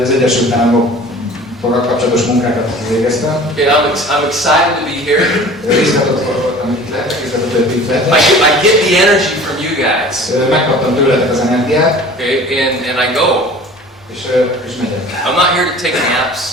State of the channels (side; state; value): both; normal; correlation 0.44